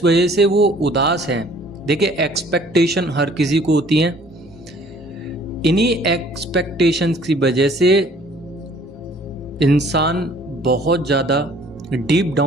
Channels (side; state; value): both; normal; correlation 0.56